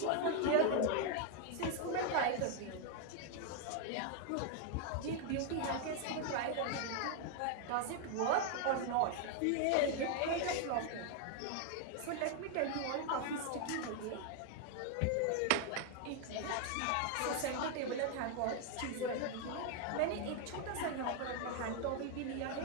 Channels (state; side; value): different; both; correlation 0.00